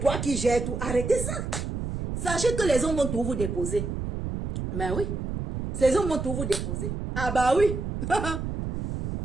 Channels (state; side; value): noise; right; rumble, 4 dB below the sound